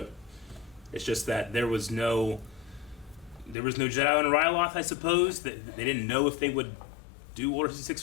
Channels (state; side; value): drops out; right; at 3.6 s